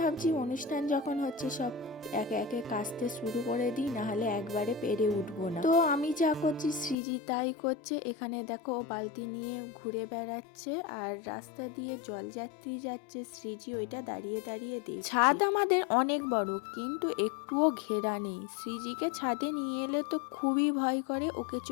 ভাবছি অনুষ্ঠান যখন হচ্ছে সব একে একে কাচতে শুরু করে দিই, নাহলে একবারে পেরে উঠবো না। তো আমি যা করছি সৃজি তাই করছে। এখানে দেখো ও বালতি নিয়ে ঘুরে বেড়াচ্ছে আর রাস্তা দিয়ে জল যাত্রী যাচ্ছে, সৃজি ওইটা দাঁড়িয়ে দাঁড়িয়ে দেখছে। ছাদ আমাদের অনেক বড়, কিন্তু একটুও ঘেরা নেই। সৃজিকে ছাদে নিয়ে এলে তো খুবই ভয় করে, ওকে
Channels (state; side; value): drops out; right; at 7.0 s